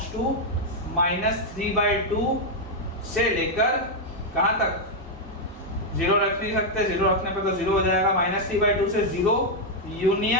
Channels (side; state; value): both; normal; correlation 0.00